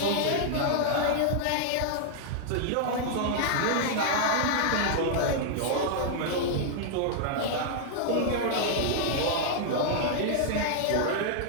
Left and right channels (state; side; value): different; both; correlation -0.01